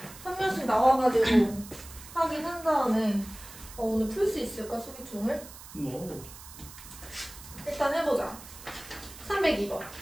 한 명씩 나와가지고 하긴 한 다음에 오늘 풀 수 있을까, 수기총을? 뭐? 일단 해보자. 302번.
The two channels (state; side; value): noise; right; hiss, 16 dB below the sound